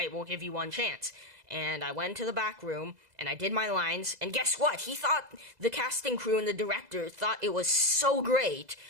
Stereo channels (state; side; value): late; left; 2.0 ms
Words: we'll give you one chance. And I went to the back room, and I did my lines, and guess what? The casting crew and the director thought it was so great